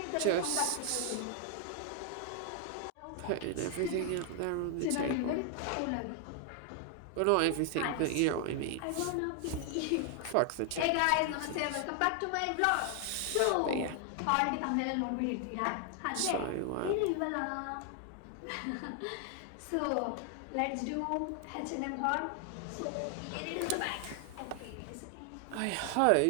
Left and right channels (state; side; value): different; both; correlation 0.00